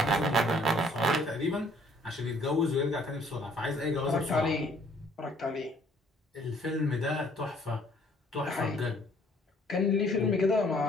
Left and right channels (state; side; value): normal; both; correlation 0.61